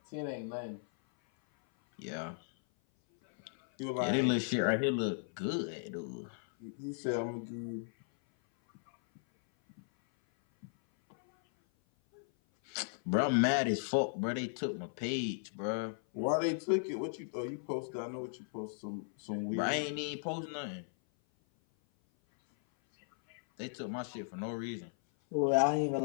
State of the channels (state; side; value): silent; right; 54 dB below the other